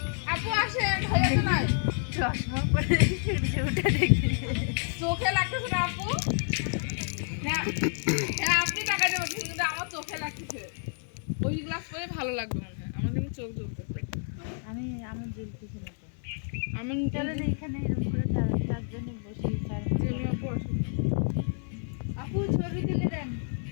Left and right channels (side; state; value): right; silent; digital silence